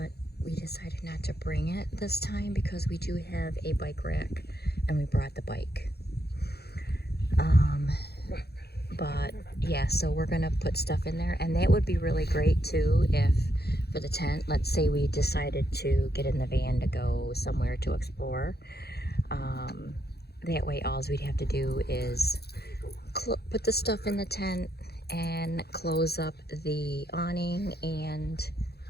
we decided not to bring it this time because we do have a bike rack and we brought the bike. But yeah, so we're gonna put stuff in there, and that would be really great too if for the tent, let's say we decided to get in the van to go somewhere to explore. That way all we'd have to do is put the stuff in the tent and close up the awning and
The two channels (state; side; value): late; right; 0.47 ms